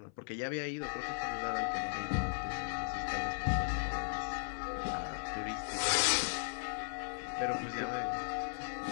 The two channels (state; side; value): silent; right; 53 dB below the other